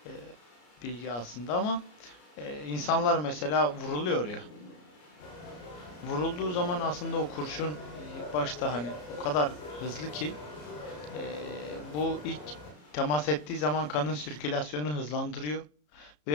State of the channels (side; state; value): right; late; 33 ms